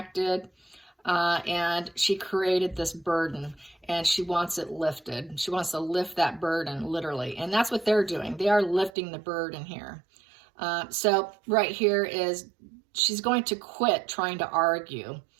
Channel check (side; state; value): left; drops out; at 8.9 s